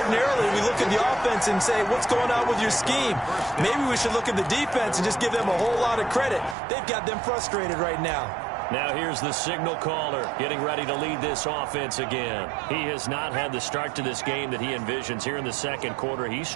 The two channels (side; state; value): left; drops out; at 6.6 s